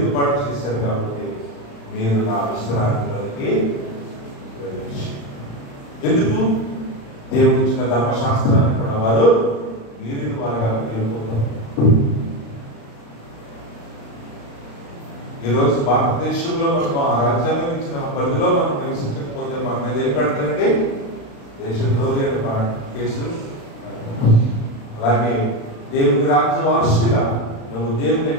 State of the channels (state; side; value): late; right; 35 ms